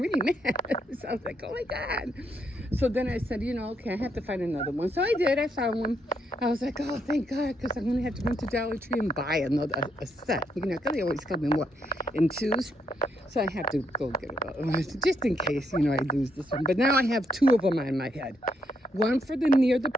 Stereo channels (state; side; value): normal; both; correlation 0.76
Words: mad. So I was like, oh my God. So then I said, okay, I have to find another one. So I did. I found one. I was like, oh, thank God, because I'm going to have to run to Dollar Tree and buy a set. Because they always come in twos. So I have to go get it, just in case, I lose this one. But now I have 2 of them on my head. One for near the